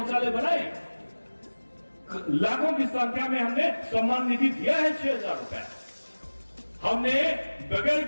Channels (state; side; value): inverted; both; correlation -1.00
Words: बनाए, लाखों की संख्या में हमने सम्मान निधि दिया है 6,000 रुपए। हमने बगैर